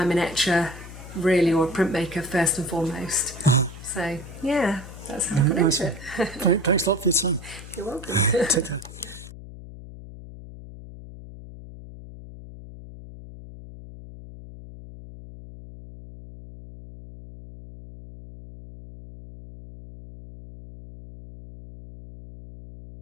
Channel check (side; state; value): left; noise; hum, 15 dB below the sound